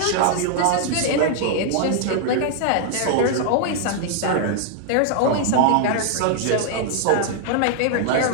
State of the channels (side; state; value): both; different; correlation 0.00